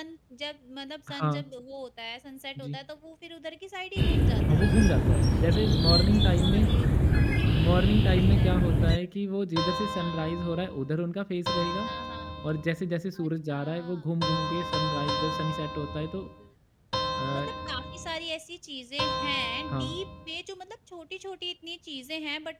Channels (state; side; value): identical; both; correlation 1.00